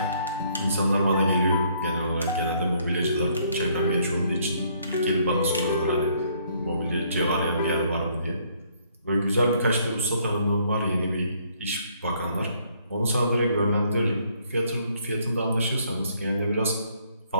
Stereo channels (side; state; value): both; inverted; correlation -0.66